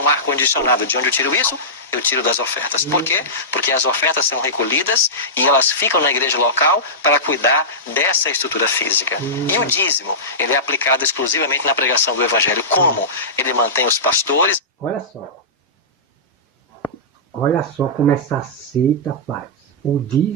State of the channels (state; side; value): normal; both; correlation -0.18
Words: ar-condicionado. De onde eu tiro isso? Eu tiro das ofertas. Por quê? Porque as ofertas são recolhidas e elas ficam na igreja local para cuidar dessa estrutura física. E o dízimo, ele é aplicado exclusivamente na pregação do Evangelho. Como? Ele mantém os pastores... Olha só como essa seita faz. O